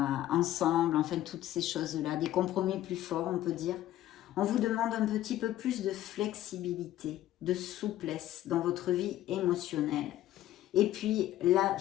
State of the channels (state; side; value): quieter; right; 13.6 dB